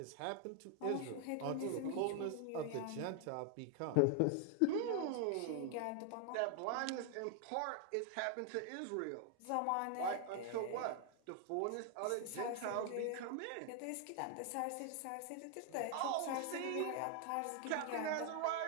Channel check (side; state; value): both; different; correlation 0.00